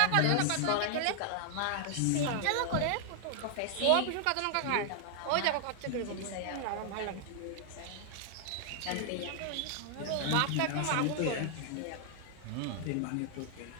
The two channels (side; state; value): both; different; correlation 0.00